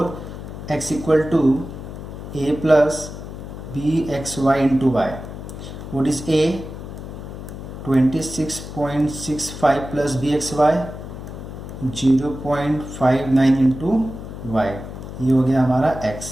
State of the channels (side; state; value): left; noise; hum, 10 dB below the sound